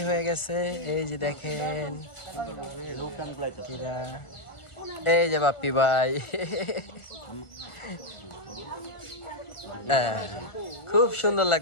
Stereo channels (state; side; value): late; right; 1.4 ms